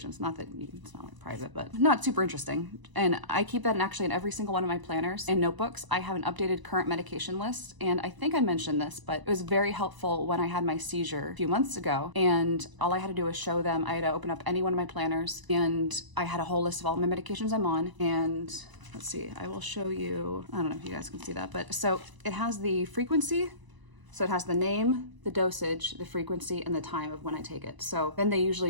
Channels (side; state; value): left; late; 1.0 ms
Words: Not that it's not like private, but not super interesting. And I keep that in every single one of my planners and notebooks. I have an updated current medication list. And I think I mentioned this, but it was very helpful when I had my seizure a few months ago. And all I had to do was show them. I had to open up any one of my planners, and I had a whole list of all my medications I'm on. And let's see, I will show you, I don't know if you guys can see that, but so it has the frequency. So it has the name, the dosage, the frequency, and the time of when I take it. So then they usually